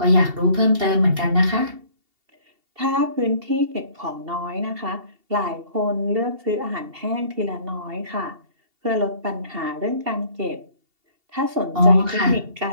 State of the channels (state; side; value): late; left; 2.7 ms